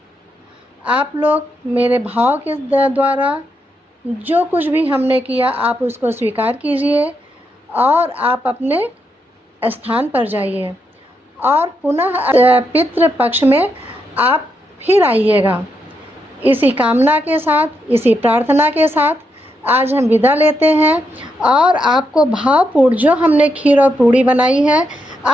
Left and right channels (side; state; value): both; normal; correlation 0.81